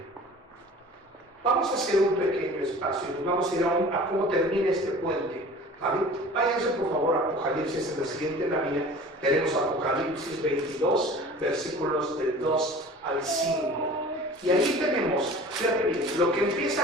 Vamos a hacer un pequeño espacio y nos vamos a ir a cómo termina este puente. ¿Vale? Váyanse por favor a Apocalipsis en la siguiente lámina. Tenemos Apocalipsis 22, versículos del 2 al 5. Y ahí tenemos, fíjate bien, lo que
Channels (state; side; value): normal; both; correlation 0.42